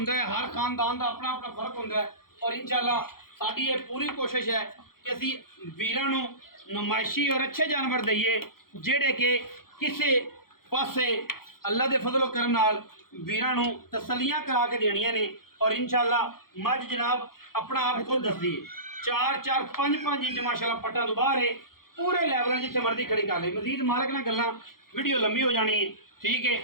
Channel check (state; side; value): late; right; 0.93 ms